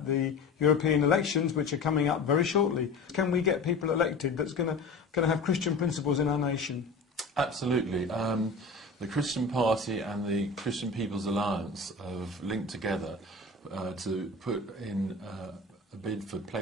the European elections, which are coming up very shortly. Can we get people elected that's going to have Christian principles in our nation? Absolutely. The Christian Party and the Christian People's Alliance have linked together to put in a bid for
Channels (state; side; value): quieter; right; 3.5 dB